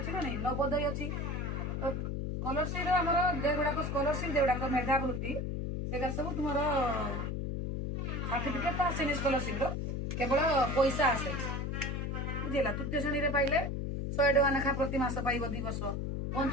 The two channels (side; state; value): left; noise; hum, 2 dB below the sound